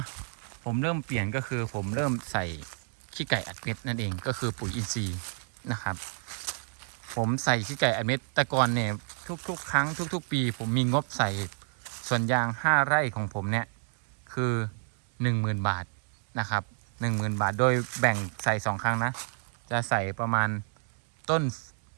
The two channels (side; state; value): left; silent; 58 dB below the other